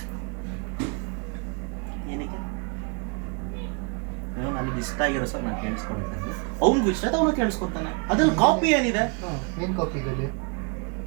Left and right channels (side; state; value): left; quieter; 34.3 dB